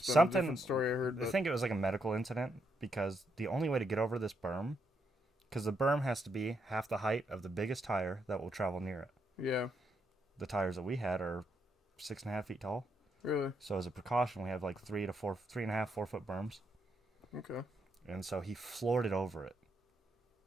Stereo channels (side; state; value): both; normal; correlation 0.78